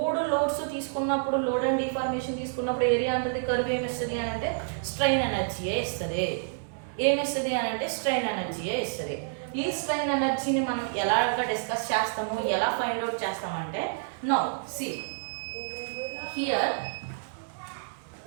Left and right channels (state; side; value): silent; left; digital silence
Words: లోడ్స్ తీసుకున్నప్పుడు, లోడ్ అండ్ డిఫార్మేషన్ తీసుకున్నప్పుడు ఏరియా అండర్ది కర్వ్ ఏమిస్తుంది అని అంటే స్ట్రెయిన్ ఎనర్జీయే ఇస్తుంది. ఏమిస్తుంది అని అంటే స్ట్రెయిన్ ఎనర్జీయే ఇస్తుంది. ఈ స్ట్రెయిన్ ఎనర్జీని మనం ఎలాగా డిస్కస్ చేస్తాము, ఎలా ఫైండ్ అవుట్ చేస్తామంటే నౌ హియర్